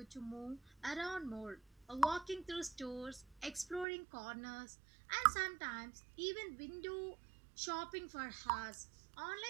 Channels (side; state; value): left; drops out; at 3.9 s